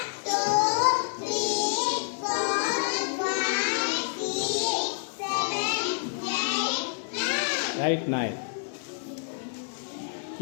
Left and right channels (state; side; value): silent; right; digital silence